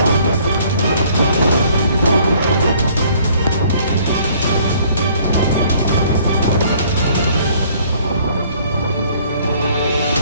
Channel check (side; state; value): both; inverted; correlation -0.58